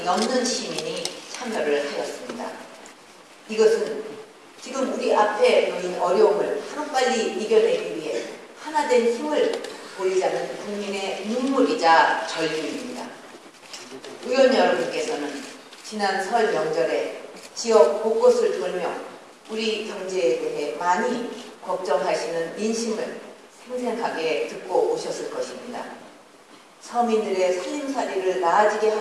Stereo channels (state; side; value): identical; both; correlation 1.00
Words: 넘는 시민이 참여를 하였습니다. 이것은 지금 우리 앞에 놓인 어려움을 하루빨리 이겨내기 위해 하나된 힘을 보이자는 국민의 눈물이자 절규입니다. 의원 여러분께서는 지난 설 명절에 지역 곳곳을 돌며 우리 경제에 대해 많이 걱정하시는 민심을 생생하게 듣고 오셨을 것입니다. 서민들의 살림살이를 나아지게